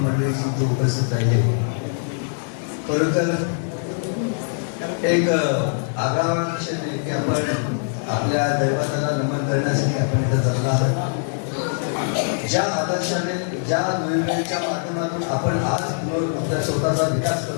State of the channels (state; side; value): silent; right; digital silence